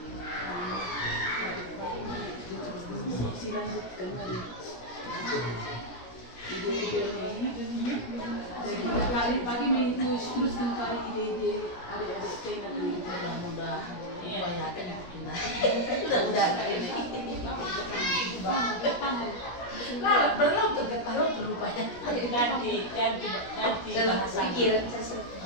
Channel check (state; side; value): late; right; 17 ms